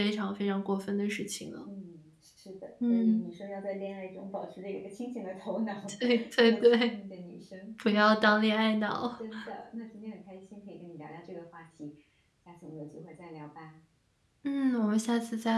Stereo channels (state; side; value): identical; both; correlation 1.00